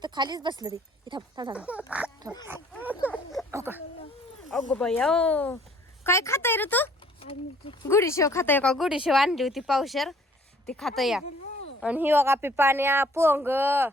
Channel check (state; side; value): normal; both; correlation 0.58